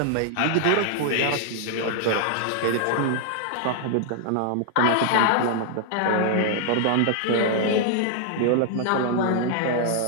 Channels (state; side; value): different; both; correlation -0.01